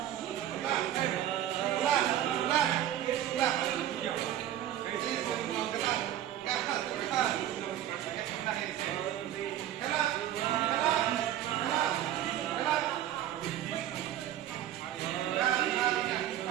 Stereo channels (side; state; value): left; quieter; 11.9 dB